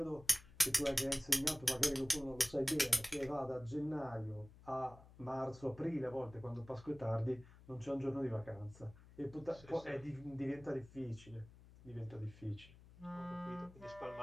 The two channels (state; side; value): noise; left; hum, 21 dB below the sound